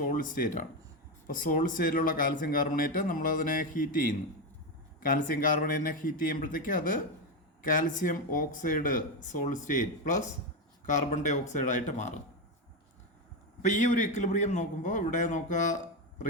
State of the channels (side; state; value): both; normal; correlation 0.11